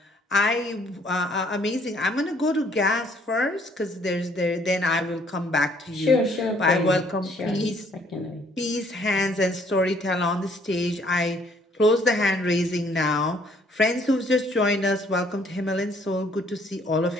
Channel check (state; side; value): normal; both; correlation 0.63